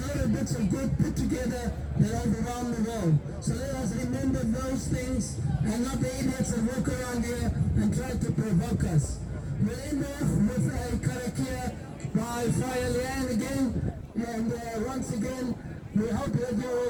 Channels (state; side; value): identical; both; correlation 1.00